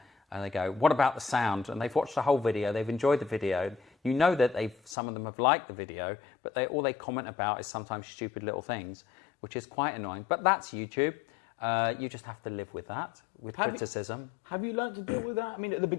And they go, what about the sound? And they've watched the whole video, they've enjoyed the video. You know that some of them have liked the video, but all they comment about is sometimes stupid little things, which is quite annoying. But that's YouTube. You just have to live with that, with criticism. Have you learned to deal with that? I mean, at the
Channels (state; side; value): drops out; right; at 5.0 s